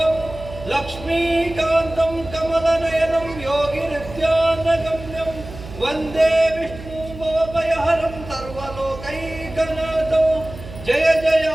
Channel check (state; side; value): noise; right; hum, 14 dB below the sound